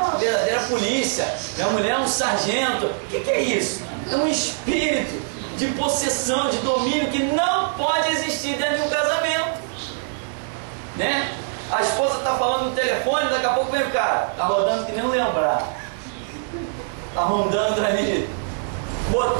uma verdadeira polícia, minha mulher é um sargento. O que é isso? É um espírito de possessão, de domínio, que não pode existir dentro de um casamento, né? A esposa está falando no telefone, daqui a pouco vem o cara. Está rodando que nem um lembrar. Está rondando ali.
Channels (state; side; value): silent; left; digital silence